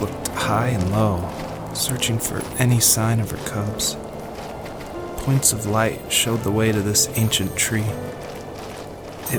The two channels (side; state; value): both; identical; correlation 1.00